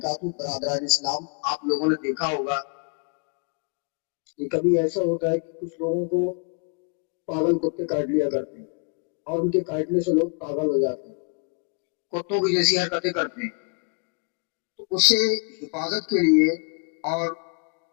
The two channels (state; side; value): quieter; right; 37.7 dB